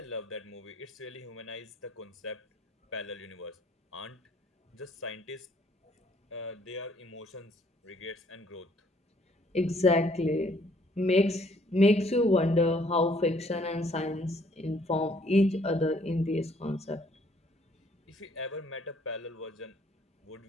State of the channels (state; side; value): normal; both; correlation 0.64